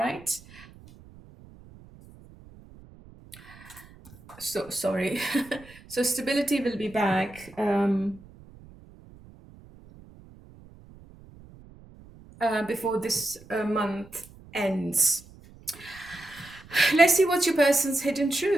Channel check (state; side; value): noise; right; rumble, 22 dB below the sound